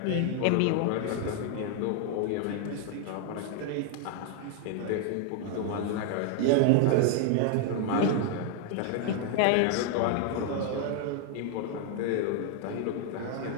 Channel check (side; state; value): both; different; correlation 0.00